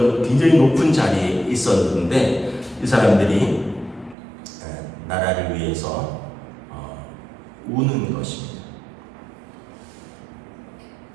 굉장히 높은 자리에 있었는데 이 사람들이 나라를 위해서 우는 것입니다.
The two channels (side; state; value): left; drops out; at 4.2 s